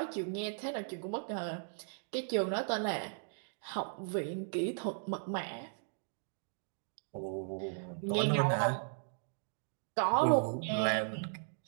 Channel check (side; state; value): left; silent; digital silence